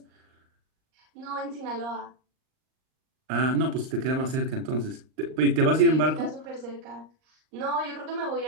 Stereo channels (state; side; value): late; left; 38 ms